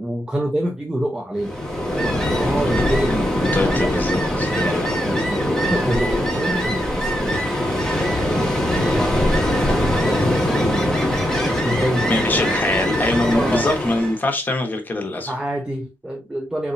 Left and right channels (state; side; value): normal; both; correlation 0.83